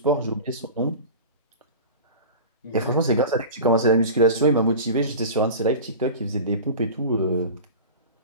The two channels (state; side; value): inverted; both; correlation -0.33